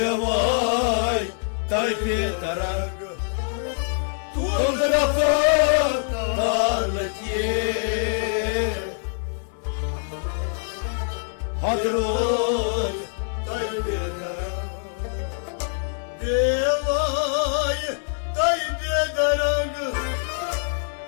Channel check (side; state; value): right; silent; 62 dB below the other